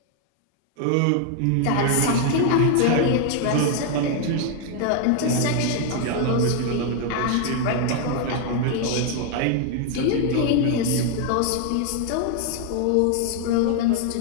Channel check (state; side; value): different; both; correlation 0.00